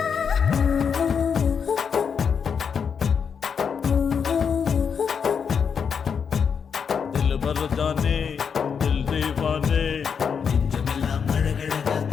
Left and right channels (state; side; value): quieter; right; 6.6 dB